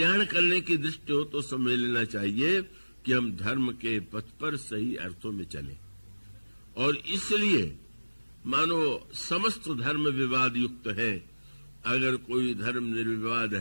करने की दृष्टि हो, तो समझ लेना चाहिए कि हम धर्म के पथ पर सही अर्थों में चले। और इसलिए मानो समस्त धर्म विवाद युक्त है। अगर कोई धर्म निर्विवाद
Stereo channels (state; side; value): inverted; both; correlation -1.00